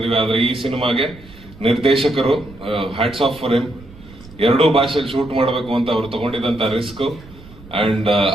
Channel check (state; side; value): noise; right; rumble, 20 dB below the sound